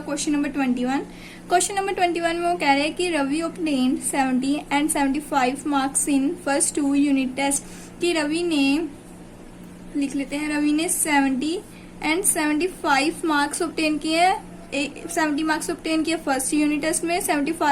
नंबर 21। क्वेश्चन नंबर 21 में वो कह रहे हैं कि Ravi obtained 70 and 75 marks in first 2 unit test. कि रवि ने, लिख लेते हैं, रवि ने 70 एंड 75 मार्क्स ऑब्टेन किए, 70 मार्क्स ऑब्टेन किए फर्स्ट यूनिट टेस्ट में,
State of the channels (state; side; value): identical; both; correlation 1.00